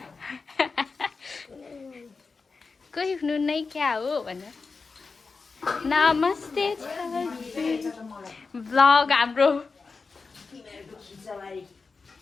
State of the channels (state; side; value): quieter; right; 4.5 dB